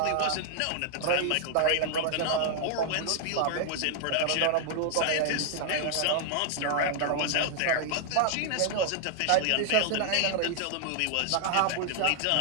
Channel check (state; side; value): different; both; correlation 0.00